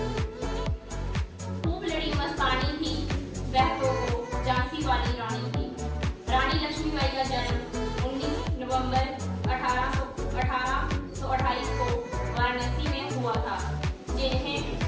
खूब लड़ी मस्तानी थी वह तो झांसी वाली रानी थी। रानी लक्ष्मीबाई का जन्म 19 नवंबर 1828 को वाराणसी में हुआ था, जिन्हें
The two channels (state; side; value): identical; both; correlation 1.00